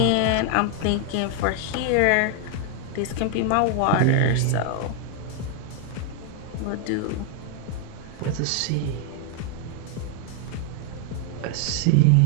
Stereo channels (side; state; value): both; different; correlation 0.00